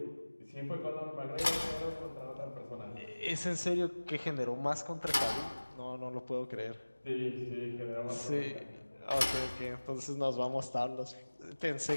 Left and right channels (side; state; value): both; inverted; correlation -1.00